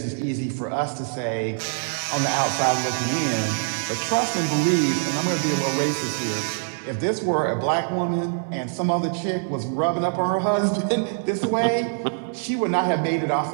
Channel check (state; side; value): silent; left; digital silence